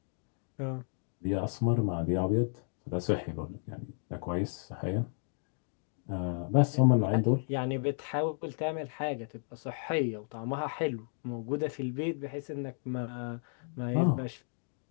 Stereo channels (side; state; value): right; silent; digital silence